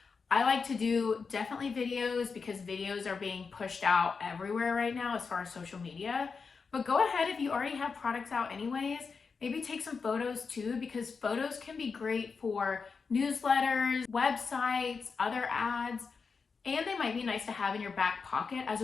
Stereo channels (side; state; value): right; quieter; 5.1 dB